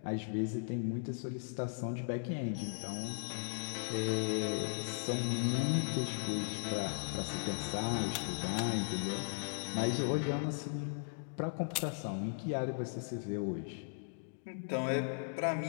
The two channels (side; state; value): right; silent; digital silence